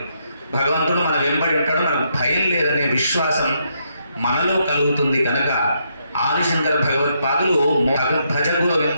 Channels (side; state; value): both; inverted; correlation -0.77